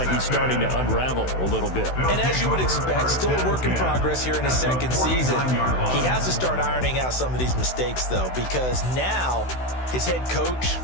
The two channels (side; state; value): right; late; 16 ms